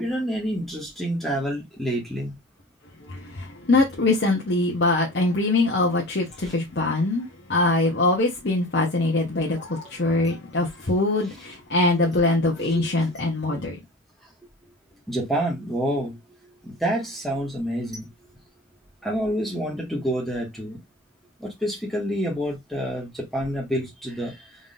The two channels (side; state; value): both; normal; correlation 0.39